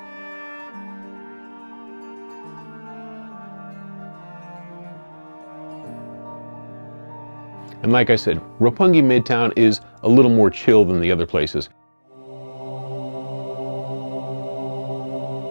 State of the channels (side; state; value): both; inverted; correlation -1.00